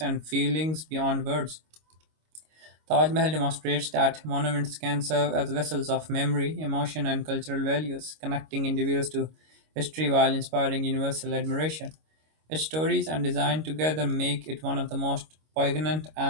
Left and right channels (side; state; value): left; late; 25 ms